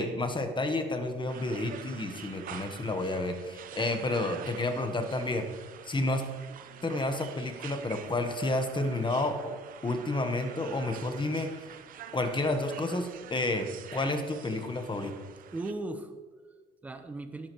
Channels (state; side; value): normal; both; correlation 0.56